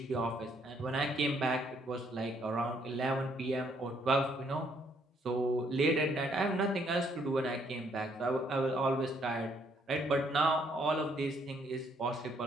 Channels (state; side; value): normal; both; correlation 0.68